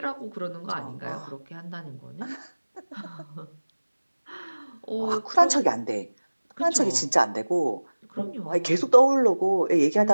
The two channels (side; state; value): both; inverted; correlation -1.00